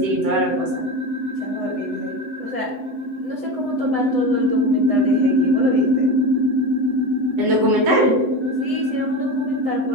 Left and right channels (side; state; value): left; late; 7.9 ms